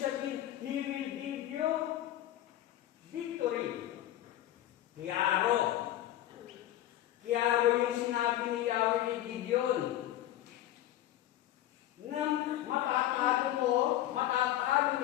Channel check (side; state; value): right; quieter; 13.5 dB